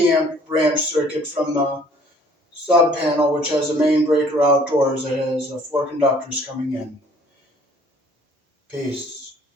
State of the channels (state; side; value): normal; both; correlation 0.57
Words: amp branch circuit from the sub panel, which has a main breaker outdoors that has four conductors coming in. Peace.